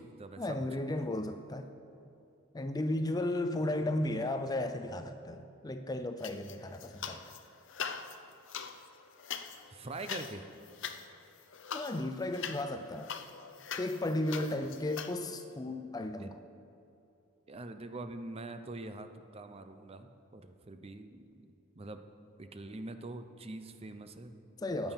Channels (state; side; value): normal; both; correlation 0.63